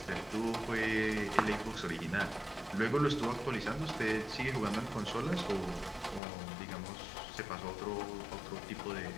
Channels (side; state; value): right; drops out; at 6.2 s